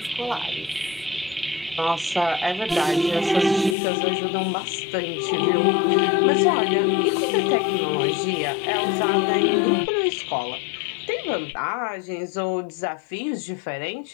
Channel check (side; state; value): right; drops out; at 3.8 s